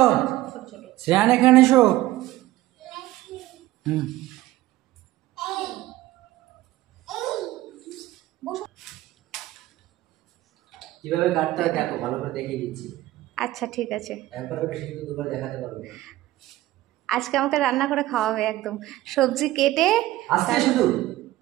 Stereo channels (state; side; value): quieter; left; 16.2 dB